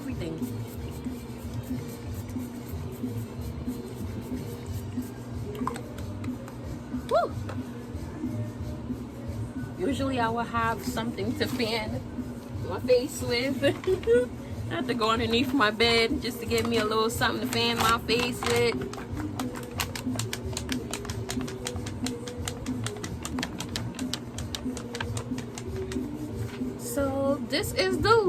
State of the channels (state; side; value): identical; both; correlation 1.00